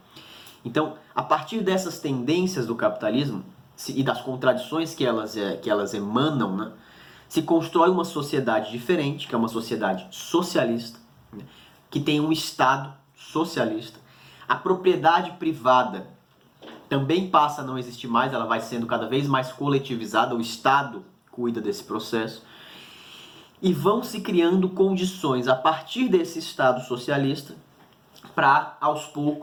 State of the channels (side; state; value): both; identical; correlation 1.00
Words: Então, a partir dessas tendências do capitalismo e das contradições que elas emanam, né, se constrói uma sociedade diferente, que é uma sociedade socialista, né, que tem um Estado socialista. A propriedade privada também passa a não existir mais, ela vai sendo cada vez mais coletivizada, o Estado cuida desse processo. E vão se criando condições a partir desse Estado socialista para, aos